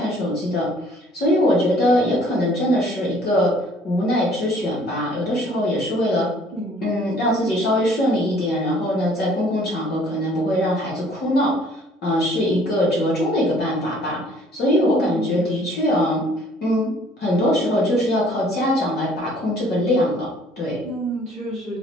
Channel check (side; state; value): both; normal; correlation 0.57